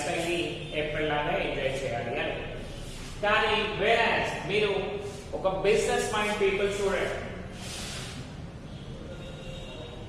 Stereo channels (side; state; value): both; identical; correlation 1.00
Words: స్టైల్ ని ఎప్పటిలాగా ఎంజాయ్ చేయాలి అని. కానీ వేరస్ మీరు ఒక బిజినెస్ మైండ్ పీపుల్ చూడండి,